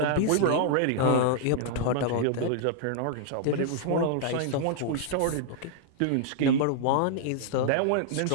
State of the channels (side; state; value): both; different; correlation -0.01